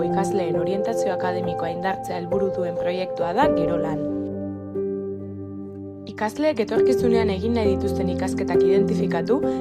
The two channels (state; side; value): identical; both; correlation 1.00